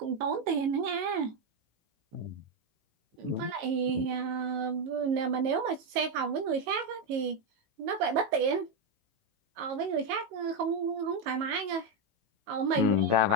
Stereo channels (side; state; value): left; late; 18 ms